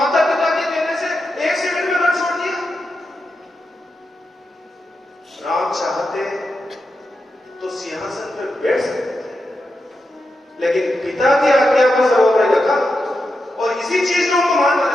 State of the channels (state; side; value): normal; both; correlation 0.87